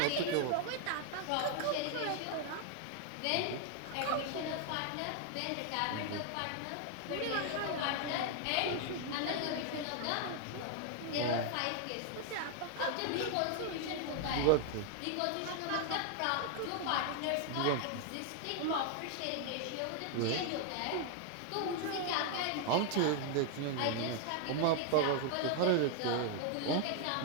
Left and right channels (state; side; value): different; both; correlation 0.00